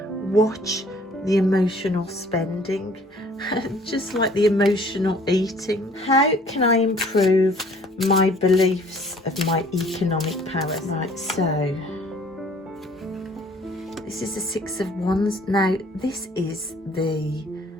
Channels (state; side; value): normal; both; correlation 0.55